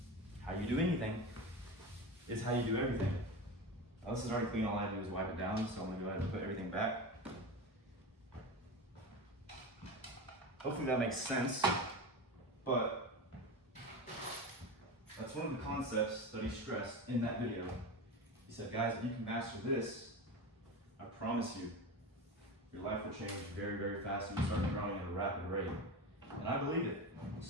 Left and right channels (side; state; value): both; normal; correlation 0.25